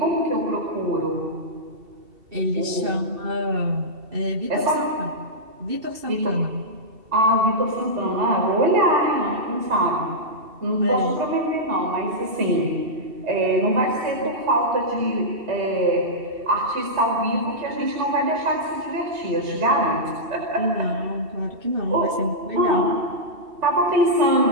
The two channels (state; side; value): late; left; 2.7 ms